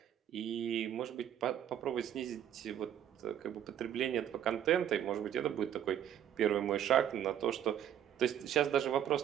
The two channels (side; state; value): left; quieter; 10.0 dB